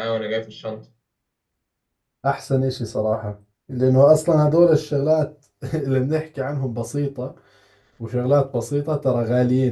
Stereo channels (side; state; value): both; identical; correlation 1.00